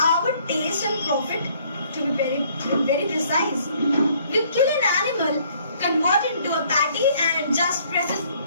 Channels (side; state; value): both; inverted; correlation -0.62